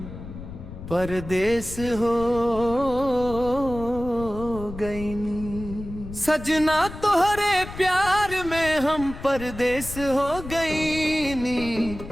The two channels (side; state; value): left; noise; rumble, 12 dB below the sound